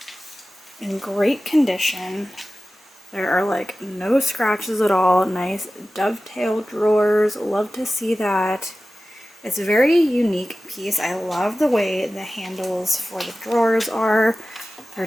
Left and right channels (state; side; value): normal; both; correlation 0.95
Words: in great condition. There are like no scratches at all. Nice dovetail drawers. Love to see that. It's a very unique piece. I love the way the handles for the drawers are. They're